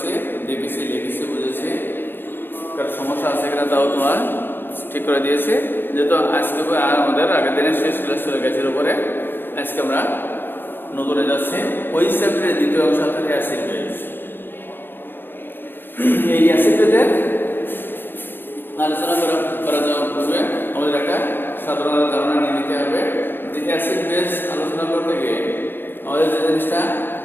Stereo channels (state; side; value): late; right; 0.099 ms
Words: দেখেছি, লিখেছি, বুঝেছি। কারণ সমস্যা আছে কিনা তাও তোমার ঠিক করে দিয়েছে। যেহেতু আজকে আর আমাদের আগের দিনের শেষ ক্লাস ছিল গ্যাসের উপরে, আজকে আমরা নতুনে যাচ্ছি ওই চ্যাপ্টারের দ্বিতীয় অংশ থেকে অ্যাসিড বেস। এই অ্যাসিড বেসের আলোচনা করা যাওয়ার পূর্বে আমাদের একটা সাধারণ ধারণা নিয়ে নিতে হবে যে অ্যাসিড বেস আলোচনা করতে গিয়ে আমাদের যে জিনিসটা